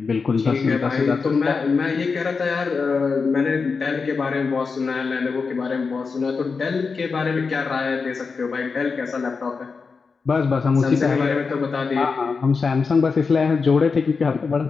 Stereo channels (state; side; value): quieter; right; 4.9 dB